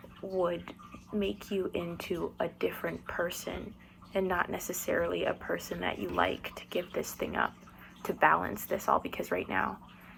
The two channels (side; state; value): both; identical; correlation 1.00